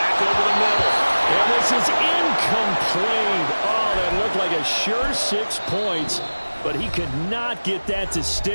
over the middle. And this is incomplete. Oh, that looked like a sure 6 points. But he could not get that to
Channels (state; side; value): inverted; both; correlation -1.00